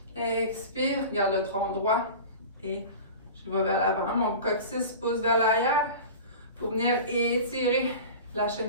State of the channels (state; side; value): inverted; both; correlation -0.35